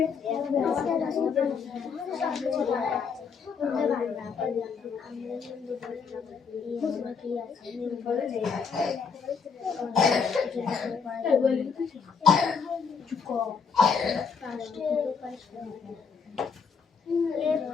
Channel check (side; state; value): right; quieter; 5.8 dB